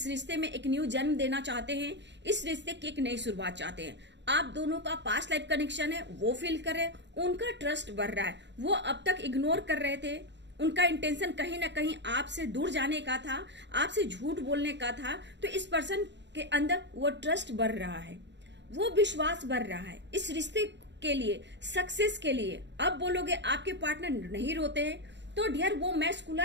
रिश्ते में एक न्यू जन्म देना चाहते हैं, इस रिश्ते की एक नई शुरुआत चाहते हैं। आप दोनों का पास्ट लाइफ कनेक्शन है, वो फील करें, उनका ट्रस्ट बढ़ रहा है। वो अब तक इग्नोर कर रहे थे, उनका इंटेंशन कहीं ना कहीं आपसे दूर जाने का था, आपसे झूठ बोलने का था। तो इस पर्सन के अंदर वो ट्रस्ट बढ़ रहा है, वो विश्वास बढ़ रहा है इस रिश्ते के लिए, सक्सेस के लिए। अब बोलोगे आपके पार्टनर नहीं रोते हैं, तो डियर वो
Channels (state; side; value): late; left; 0.52 ms